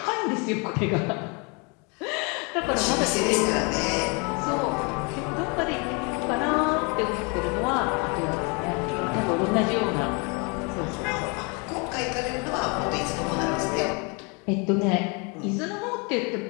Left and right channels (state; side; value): quieter; right; 32.3 dB